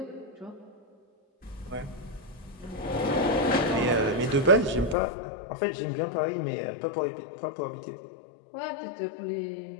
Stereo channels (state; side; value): drops out; right; at 5.0 s